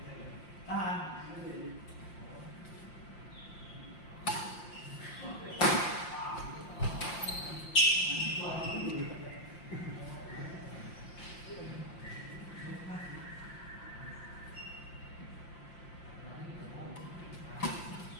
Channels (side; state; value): right; late; 5.7 ms